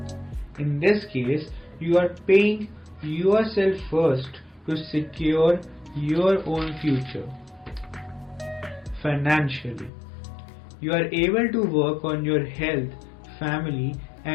In this case, you are paying yourself first to secure your own future. Financially, you are able to work on your health, family,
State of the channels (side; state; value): right; drops out; at 9.9 s